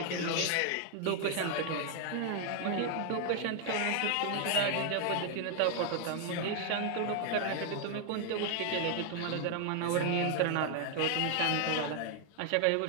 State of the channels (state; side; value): different; both; correlation 0.00